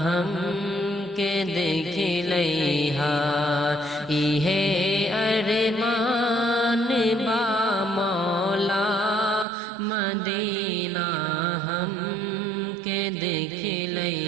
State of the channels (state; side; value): drops out; left; at 9.5 s